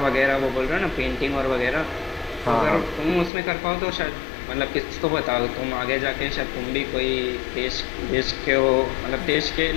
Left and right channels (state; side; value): drops out; right; at 3.3 s